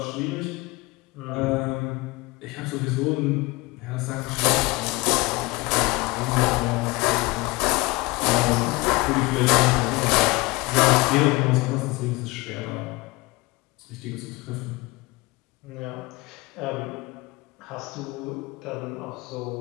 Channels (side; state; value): right; quieter; 23.1 dB